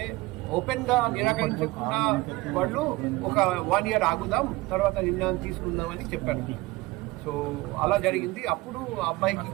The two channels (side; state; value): left; quieter; 20.9 dB